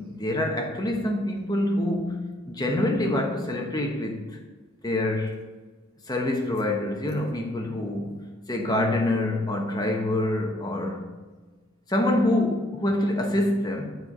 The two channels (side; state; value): both; normal; correlation 0.66